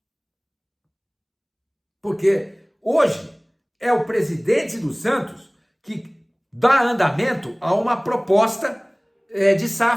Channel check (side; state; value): both; identical; correlation 1.00